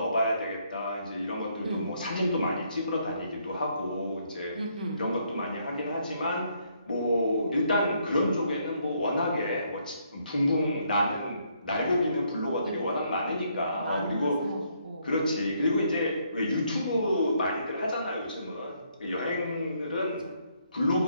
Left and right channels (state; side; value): inverted; both; correlation -0.71